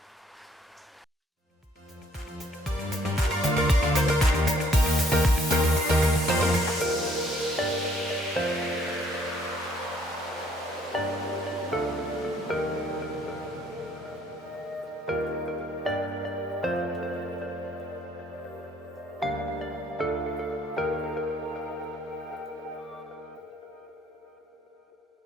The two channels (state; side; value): normal; both; correlation 0.63